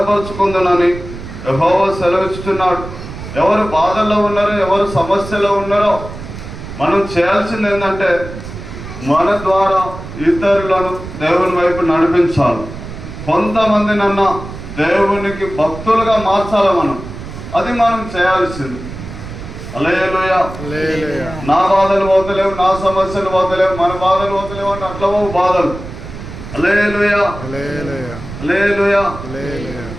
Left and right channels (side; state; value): right; noise; rumble, 11 dB below the sound